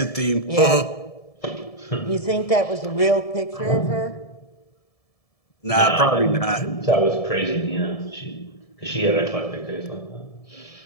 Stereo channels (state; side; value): late; right; 1.7 ms